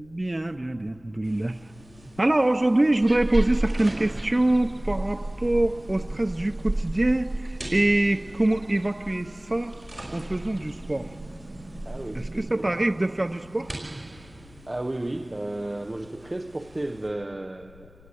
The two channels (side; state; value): left; noise; rumble, 25 dB below the sound